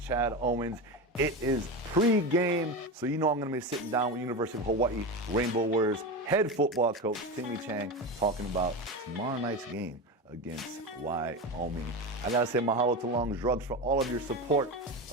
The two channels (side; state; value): both; normal; correlation 0.21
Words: Owens. It is pre-game, so you know I'm going to be sitting down with University of Hawaii Rainbow Warriors head football coach Timmy Chang talking about tomorrow night's game against Wyoming. I got to say mahalo to Long's Drugs for all of your support